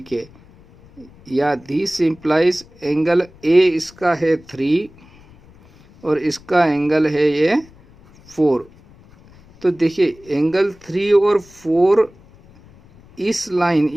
के, या दिस इम्प्लाइज एंगल ए इसका है 3 और इसका एंगल है ये 4। तो देखिए एंगल 3 और 4 इस लाइन,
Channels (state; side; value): noise; left; rumble, 25 dB below the sound